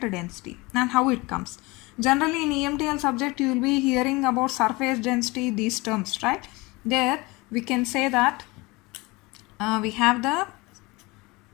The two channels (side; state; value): right; quieter; 23.8 dB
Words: and how it comes. Generally in EMTL subject you will be hearing about surface density, these terms, right? There we can say that we have the